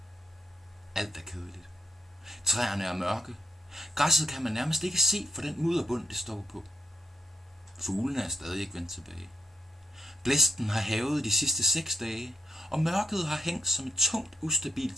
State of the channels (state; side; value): normal; both; correlation 0.78